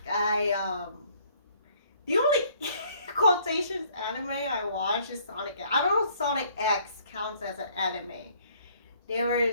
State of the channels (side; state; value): both; inverted; correlation -0.61